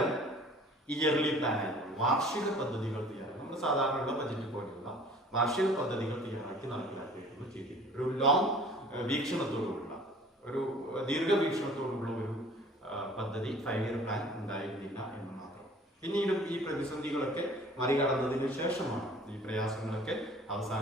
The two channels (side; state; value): both; normal; correlation 0.49